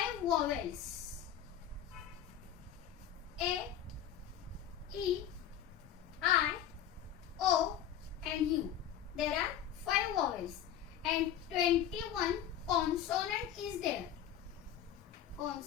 vowels. A, E, I, O and U. There are 5 vowels and 21 consonant is there.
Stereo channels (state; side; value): quieter; right; 9.9 dB